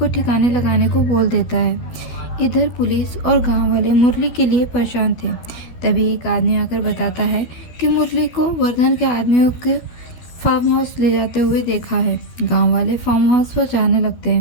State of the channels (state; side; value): late; right; 13 ms